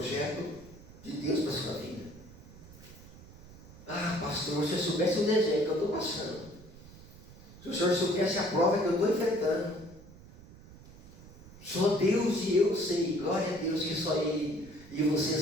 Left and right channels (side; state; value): right; noise; rumble, 19 dB below the sound